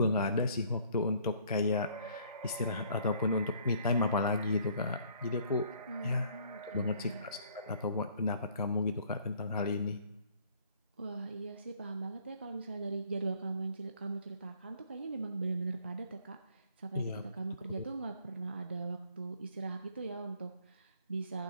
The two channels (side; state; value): both; inverted; correlation -0.60